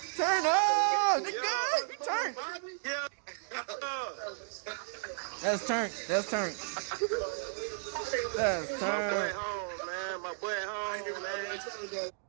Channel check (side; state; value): left; silent; digital silence